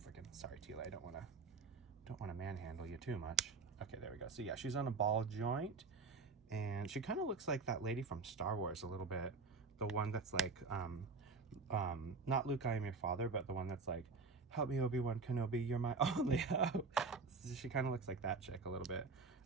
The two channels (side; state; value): left; quieter; 4.3 dB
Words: I can. Sorry, Teela, I don't want to manhandle you too much. Okay, there we go. So yeah, she's on a ball joint, and she kind of looks like that lady from Star Wars a little bit. The one that's like, not Luke, I am your father, but the one that's like, help me, Obi-Wan Kenobi, you're my only hope. She kind of looks like that chick a little bit.